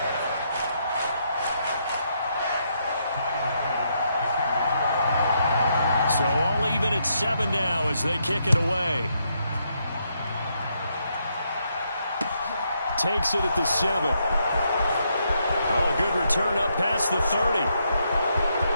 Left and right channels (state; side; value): inverted; both; correlation -0.77